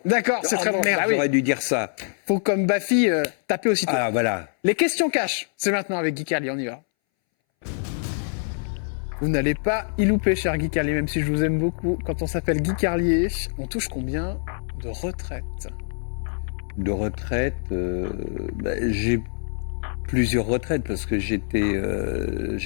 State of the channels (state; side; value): silent; right; 61 dB below the other